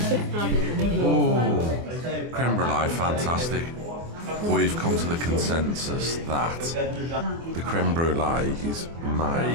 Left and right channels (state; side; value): late; left; 24 ms